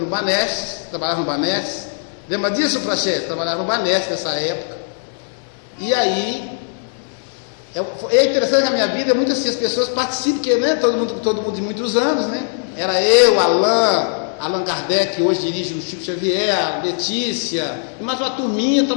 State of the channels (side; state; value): right; silent; digital silence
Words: Banestes, trabalhava no Banestes, Lembra disso, Prachete? Trabalhava no Banesp nessa época. E aí, é interessante que a minha vida é muito assim, as pessoas participam, porque, né, todo mundo de muitos anos, né? Era eu, Allan Kardec, que hoje dirige o Chico Xavier, a Letícia, e mais uma turminha